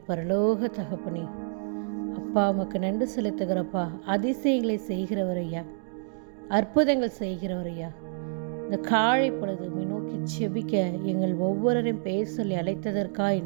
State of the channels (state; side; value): silent; left; digital silence